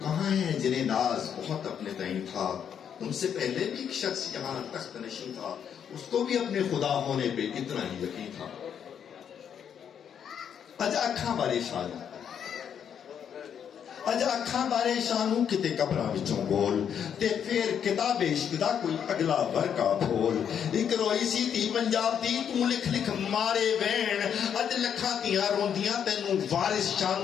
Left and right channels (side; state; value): right; quieter; 8.3 dB